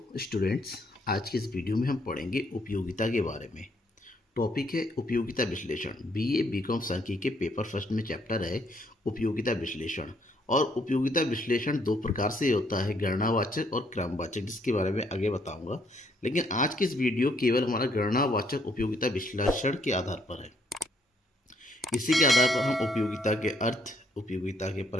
स्टूडेंट्स, आज की इस वीडियो में हम पढ़ेंगे उपयोगिता के बारे में। टॉपिक है उपयोगिता विश्लेषण। बीए बीकॉम सांख्यिकी के पेपर फर्स्ट में चैप्टर है उपयोगिता विश्लेषण। और उपयोगिता विश्लेषण दो प्रकार से होता है, गणनावाचक और क्रमवाचक, जिसके बारे में आगे बताऊंगा। लेकिन आज की इस वीडियो केवल हमारा गणनावाचक उपयोगिता विश्लेषण के आधार पर है। इसी के आधार पर हम उपयोगिता के अर्थ, उपयोगिता के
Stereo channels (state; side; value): normal; both; correlation 0.69